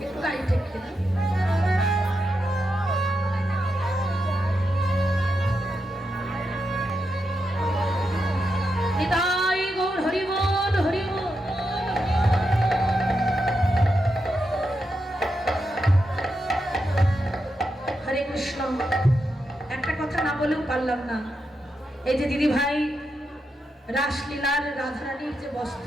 একটা কথা না বলেও পারলাম না। এই যে দিদি ভাই রাসলীলার রাধারানীর যে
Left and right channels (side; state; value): both; normal; correlation 0.85